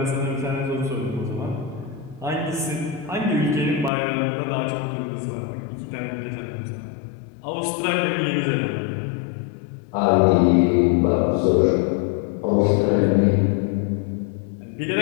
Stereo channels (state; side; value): drops out; right; at 3.9 s